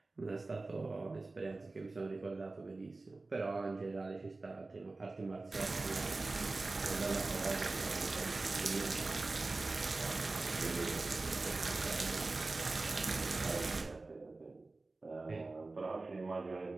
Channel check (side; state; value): left; quieter; 3.4 dB